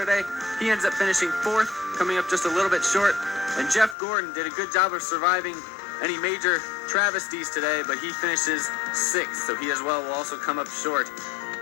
He ends up finishing fourth, coming up just a little bit short. And Jeff Gordon did a good job of surviving any major travesties today, but he finishes sixth, so he as well will also come up short.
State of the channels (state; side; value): drops out; right; at 4.0 s